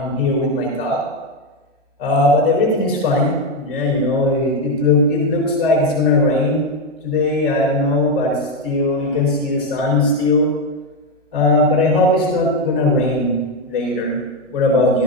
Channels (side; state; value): both; normal; correlation 0.07